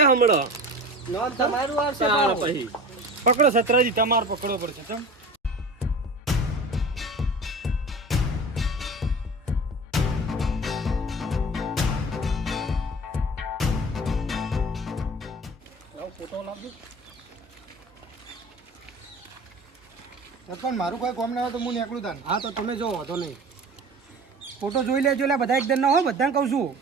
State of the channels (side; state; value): both; normal; correlation 0.37